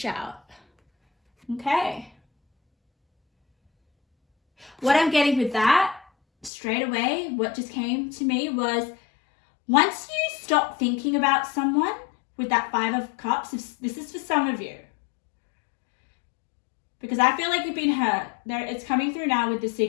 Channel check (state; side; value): drops out; right; at 6.5 s